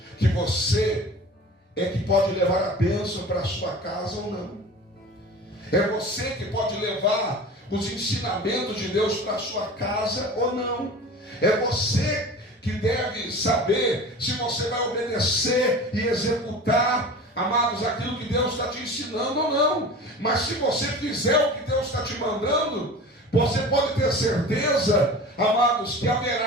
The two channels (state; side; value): normal; both; correlation 0.37